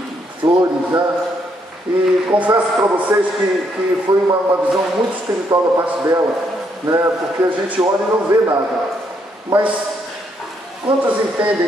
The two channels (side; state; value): both; normal; correlation 0.74